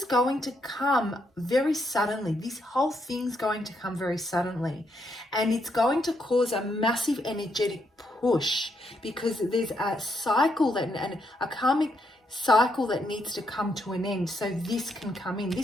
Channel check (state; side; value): normal; both; correlation 0.77